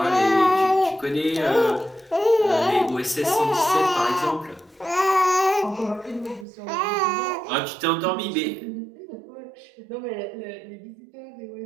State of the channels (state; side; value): drops out; left; at 6.5 s